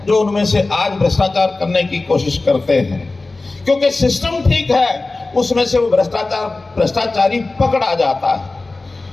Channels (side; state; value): right; quieter; 3.3 dB